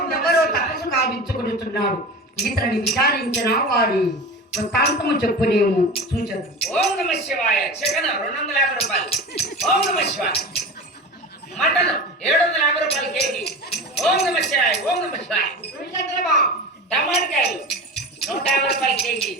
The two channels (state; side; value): normal; both; correlation 0.31